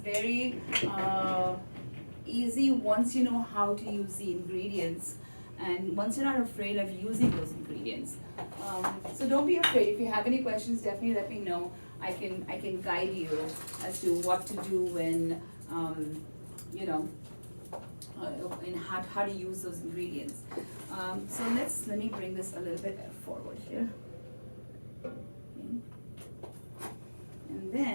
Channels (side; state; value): both; inverted; correlation -1.00